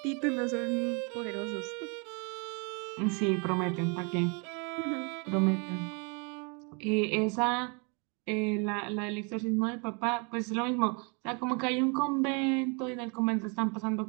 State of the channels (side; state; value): left; quieter; 34.0 dB